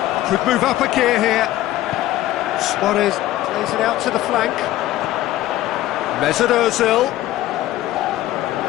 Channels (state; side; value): quieter; right; 14.8 dB